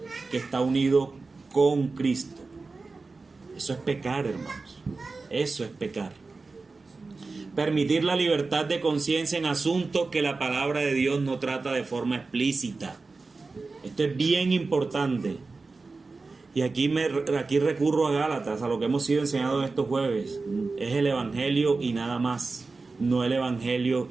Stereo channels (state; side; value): quieter; left; 3.9 dB